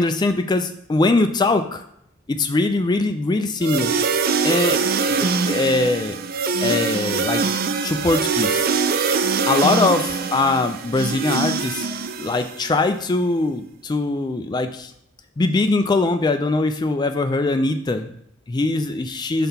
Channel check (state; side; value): normal; both; correlation 0.45